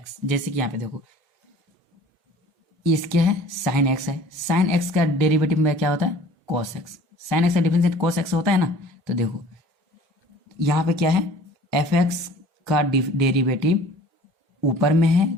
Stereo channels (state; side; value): normal; both; correlation 0.48